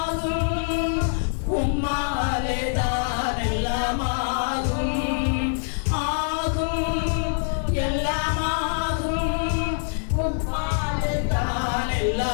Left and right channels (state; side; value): silent; right; digital silence